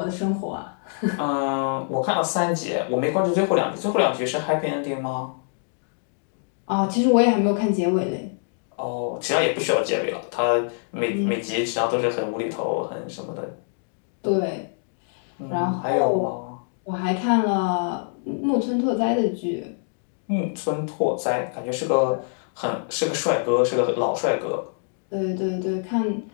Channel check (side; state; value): right; silent; digital silence